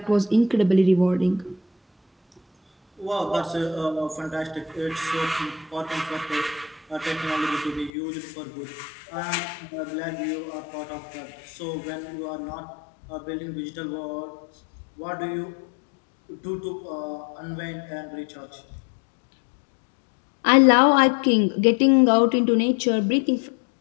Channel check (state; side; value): drops out; right; at 7.9 s